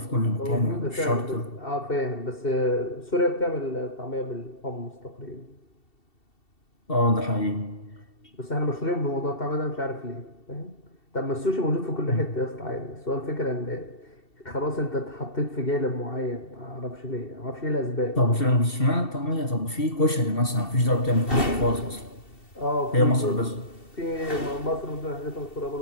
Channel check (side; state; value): right; late; 2.7 ms